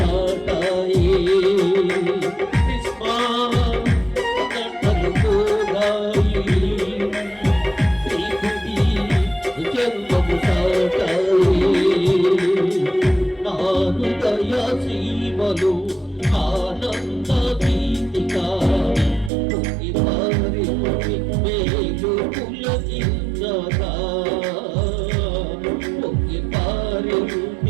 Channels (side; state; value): left; drops out; at 19.3 s